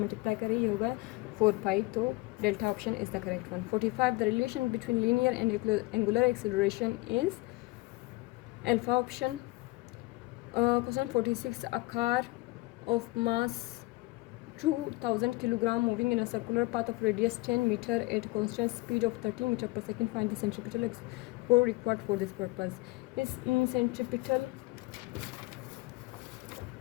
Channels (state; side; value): quieter; right; 22.6 dB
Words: करें ये होगा 4 पाई, तो delta option is the correct one. 45 the relation between linear and angular acceleration is alpha option. Question 46 a car of mass 2000 kilogram moving in a circular path of radius 10 meter at constant speed of 30 meter per second. Find the centripetal force required for this purpose. इस